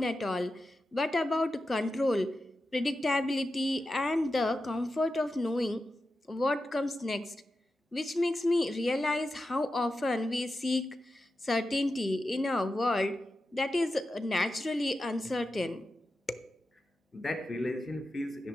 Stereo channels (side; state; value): both; normal; correlation 0.91